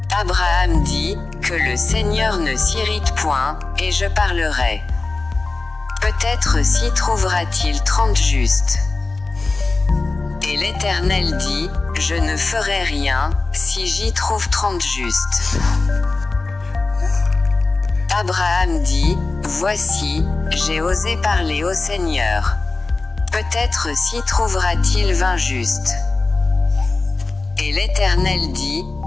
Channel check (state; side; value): quieter; right; 3.5 dB